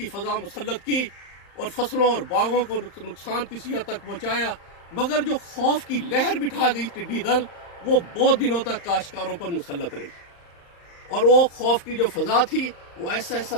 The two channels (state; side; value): late; right; 35 ms